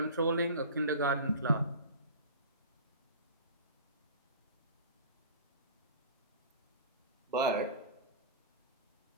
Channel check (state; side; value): inverted; both; correlation -0.37